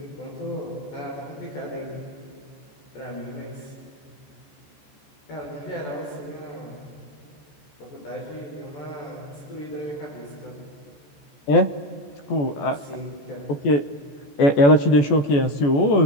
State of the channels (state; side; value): late; right; 14 ms